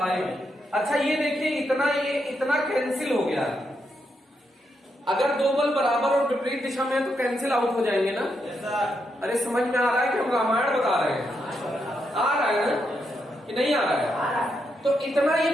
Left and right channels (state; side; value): normal; both; correlation 0.81